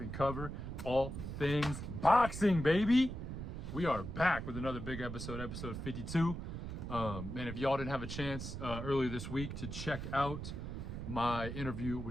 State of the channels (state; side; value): noise; right; rumble, 6 dB below the sound